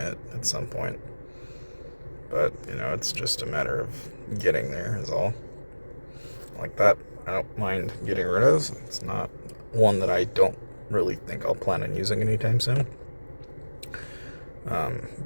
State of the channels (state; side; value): inverted; both; correlation -1.00